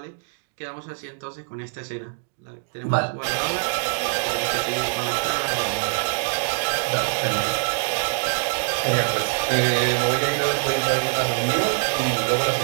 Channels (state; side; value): silent; left; digital silence